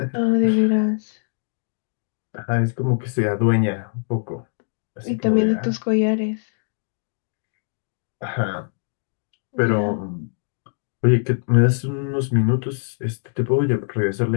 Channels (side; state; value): right; silent; digital silence